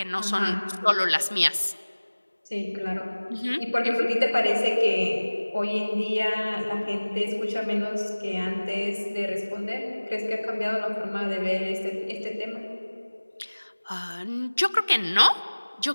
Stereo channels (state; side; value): inverted; both; correlation -1.00